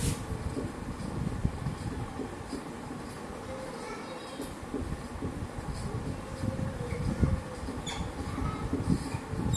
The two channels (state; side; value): identical; both; correlation 1.00